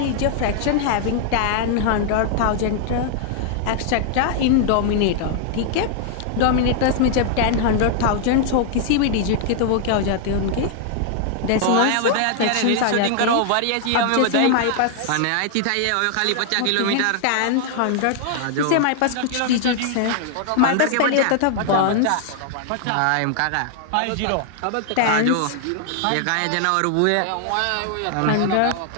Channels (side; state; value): both; different; correlation 0.00